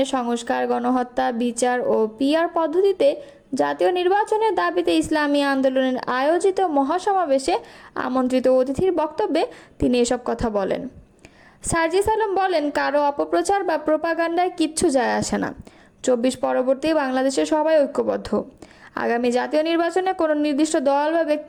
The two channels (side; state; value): both; identical; correlation 1.00